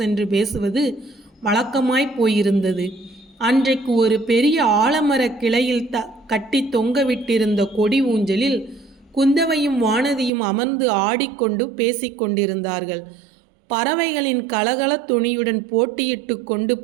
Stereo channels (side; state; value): left; drops out; at 10.3 s